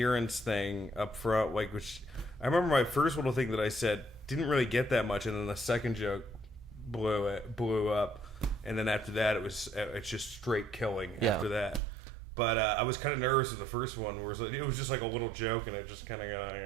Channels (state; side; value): drops out; left; at 11.8 s